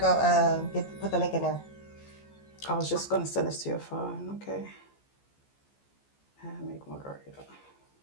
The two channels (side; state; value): right; late; 14 ms